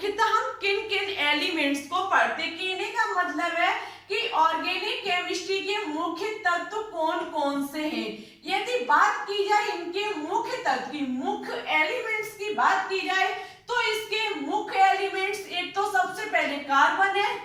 हम किन किन एलिमेंट्स को पढ़ते हैं। कहने का मतलब है कि ऑर्गेनिक केमिस्ट्री के मुख्य तत्व कौन कौन से हैं। यदि बात की जाए इनके मुख्य तत्व की, मुख्य एलिमेंट्स की बात की जाए तो इसके मुख्य एलिमेंट्स एक तो सबसे पहले कार्बन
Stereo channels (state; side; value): identical; both; correlation 1.00